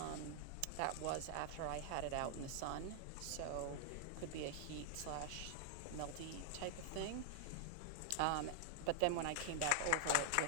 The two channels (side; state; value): both; different; correlation -0.01